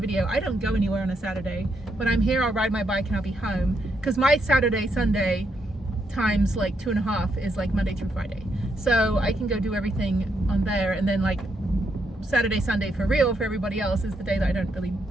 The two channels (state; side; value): normal; both; correlation 0.78